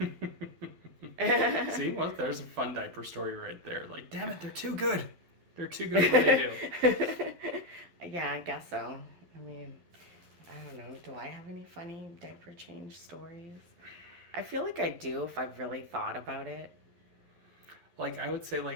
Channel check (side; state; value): left; late; 11 ms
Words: See, well, there's a fun diaper story right there. Like, damn it, they're too good. They're too good at what they Yeah, I guess so. I mean, I don't know. Do I have any funny diaper change stories? I feel like I do if I've really thought about it. do. Like, I would say,